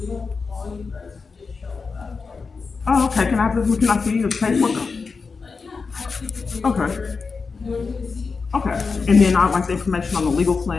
Oh, okay. Can I see the paperwork? Okay. Okay. And then I'd like the information on the legal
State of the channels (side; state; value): right; quieter; 4.7 dB